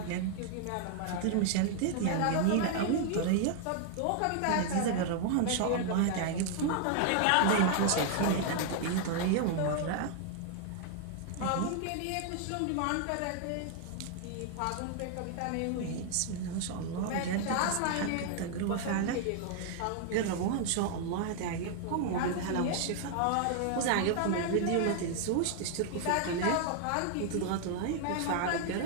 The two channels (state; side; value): different; both; correlation 0.00